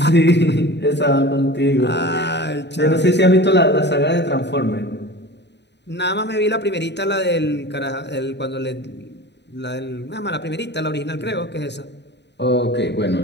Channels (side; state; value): right; late; 0.50 ms